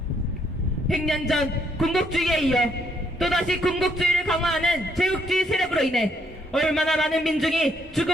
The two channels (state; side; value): normal; both; correlation 0.71